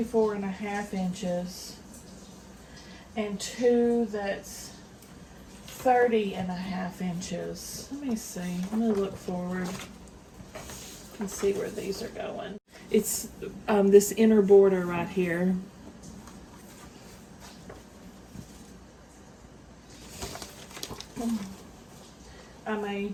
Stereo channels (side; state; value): both; identical; correlation 1.00